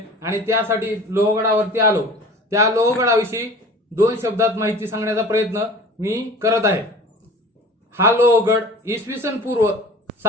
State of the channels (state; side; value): normal; both; correlation 0.42